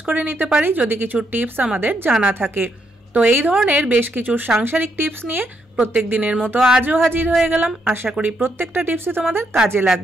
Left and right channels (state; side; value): normal; both; correlation 0.77